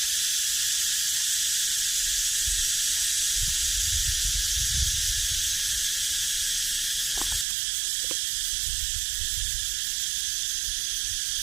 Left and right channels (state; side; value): drops out; left; at 7.5 s